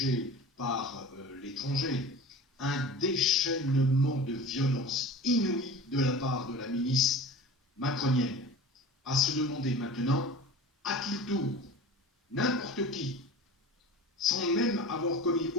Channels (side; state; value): both; normal; correlation 0.37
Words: par l'étranger. Un déchaînement de violence inouïe de la part de la milice macronienne. À se demander maintenant à qui tour, n'importe qui, sans même avoir commis